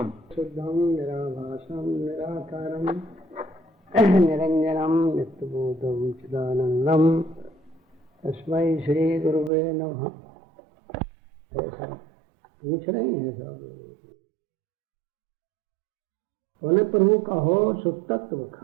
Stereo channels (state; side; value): drops out; left; at 9.5 s